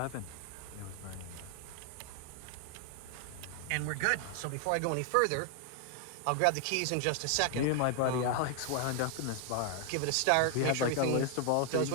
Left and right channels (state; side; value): different; both; correlation 0.00